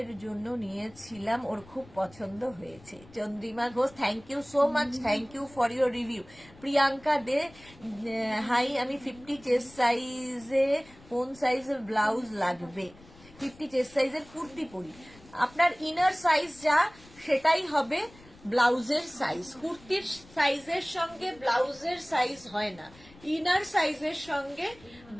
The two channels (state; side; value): noise; left; rumble, 23 dB below the sound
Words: জন্য নিয়েছিলাম, ওর খুব পছন্দ হয়েছে। Chandrima Ghosh, thank you so much, thank you for your review. Priyanka De, hi, আমি 50 চেস্ট সাইজে কোন সাইজের ব্লাউজ লাগবে? 50 চেস্ট সাইজের কুর্তি পরি, আপনার ইনার সাইজ যা সেটাই হবে ব্লাউজের সাইজ। কুর্তির সাইজের সঙ্গে ব্লাউজের সাইজ হয় না, ইনার সাইজের সঙ্গে